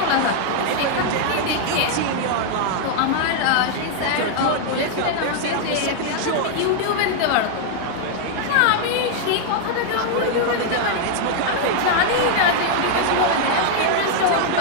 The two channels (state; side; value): different; both; correlation -0.01